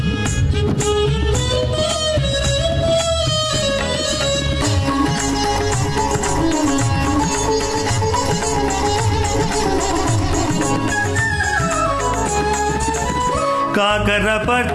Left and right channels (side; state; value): both; identical; correlation 1.00